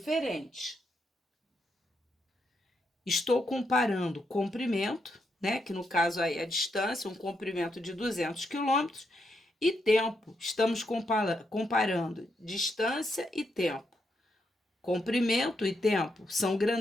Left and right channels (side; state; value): both; normal; correlation 0.80